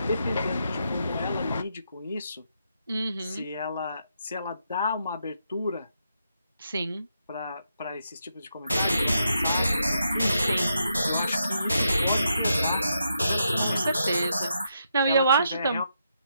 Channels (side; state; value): both; inverted; correlation -0.80